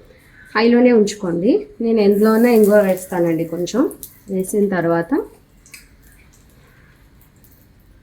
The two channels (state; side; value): identical; both; correlation 1.00